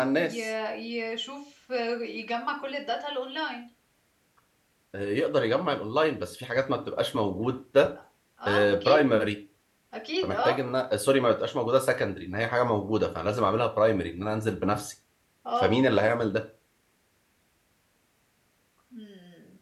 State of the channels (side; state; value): both; identical; correlation 1.00